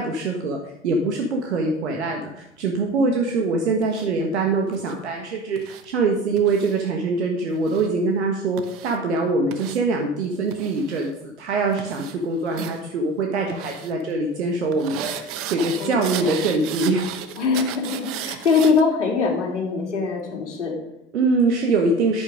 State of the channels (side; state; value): both; normal; correlation 0.36